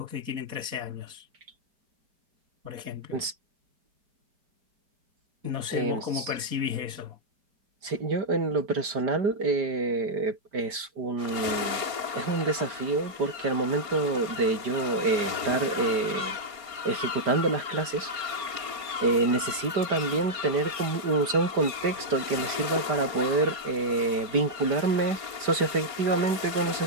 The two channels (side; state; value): left; late; 5.1 ms